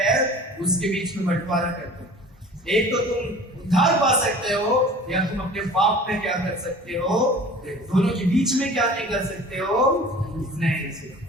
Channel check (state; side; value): normal; both; correlation 0.43